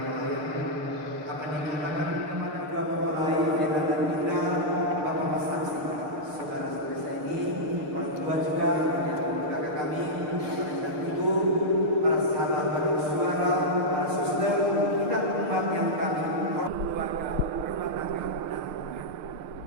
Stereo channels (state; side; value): late; left; 6.6 ms